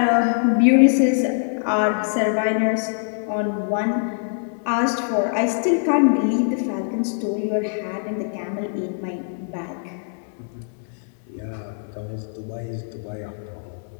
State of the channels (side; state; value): right; silent; digital silence